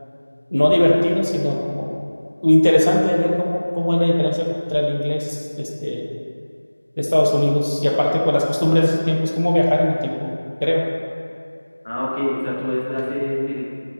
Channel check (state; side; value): inverted; both; correlation -1.00